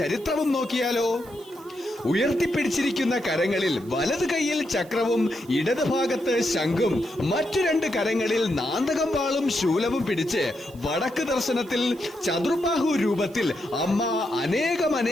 നോക്കിയാലോ? ഉയർത്തിപ്പിടിച്ചിരിക്കുന്ന കരങ്ങളിൽ വലത് കൈയിൽ ചക്രവും ഇടത് ഭാഗത്ത് ശംഖും മറ്റു രണ്ട് കരങ്ങളിൽ നാന്തകം വാളും ശൂലവും പിടിച്ച് വടക്ക് ദർശനത്തിൽ ചതുർബാഹു രൂപത്തിൽ അമ്മ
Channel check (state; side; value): noise; right; hiss, 25 dB below the sound